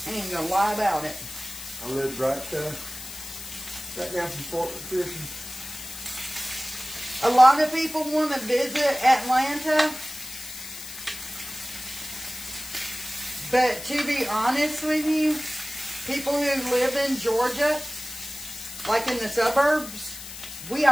I ain't gonna lie about it. I lived right down from Fort McPherson. A lot of people want to visit Atlanta, but to be honest with you, people who live in Georgia, like in the suburbs, we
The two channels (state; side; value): noise; left; hiss, 12 dB below the sound